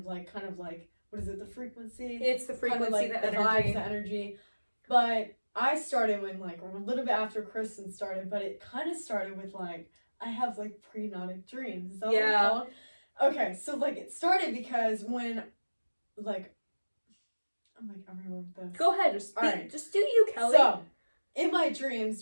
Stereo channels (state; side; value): inverted; both; correlation -1.00